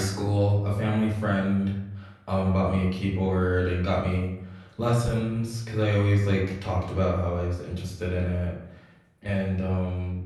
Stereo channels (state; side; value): identical; both; correlation 1.00